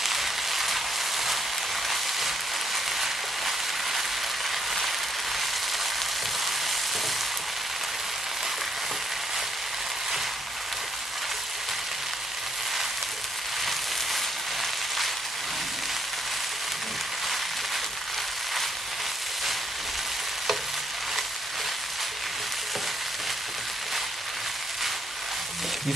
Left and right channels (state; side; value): normal; both; correlation 0.72